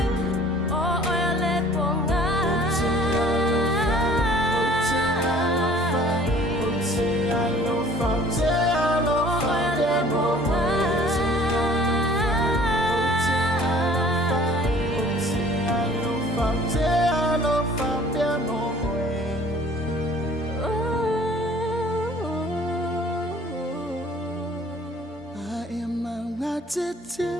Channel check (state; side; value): normal; both; correlation 0.52